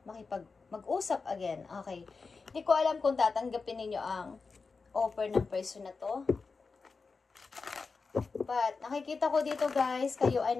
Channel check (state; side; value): quieter; right; 4.5 dB